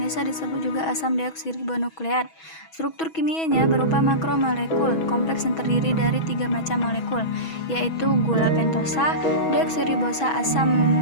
disebut juga asam deoksiribonukleat. Struktur kimianya berupa makromolekul kompleks yang terdiri dari 3 macam molekul, yaitu gula pentosa, deoksiribosa, asam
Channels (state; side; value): late; right; 6.2 ms